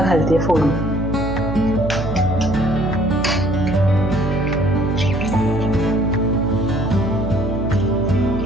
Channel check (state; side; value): noise; right; hum, 5 dB below the sound